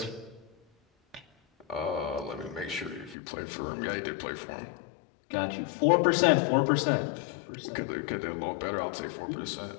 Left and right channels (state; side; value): drops out; right; at 3.2 s